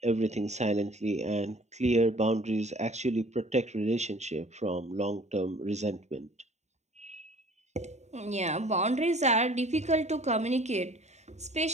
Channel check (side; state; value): left; late; 0.33 ms